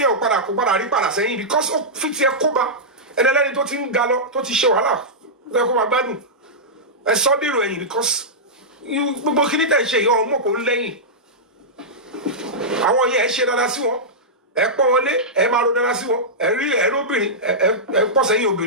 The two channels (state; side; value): normal; both; correlation -0.11